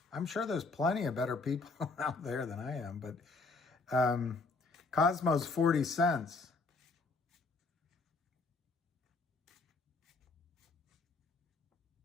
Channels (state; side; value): quieter; right; 3.7 dB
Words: I'm sure there's plenty of better people out there than I am, but Cosmo's 40 cents.